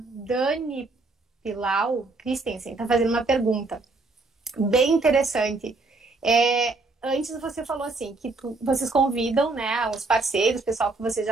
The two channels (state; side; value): quieter; left; 3.5 dB